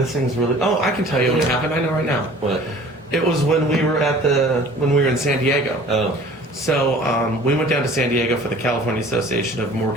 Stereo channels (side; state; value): both; normal; correlation 0.47